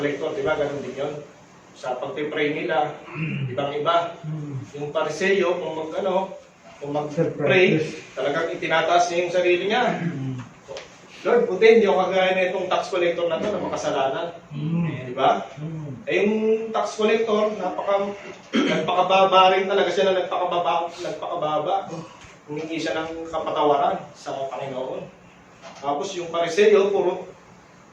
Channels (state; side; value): identical; both; correlation 1.00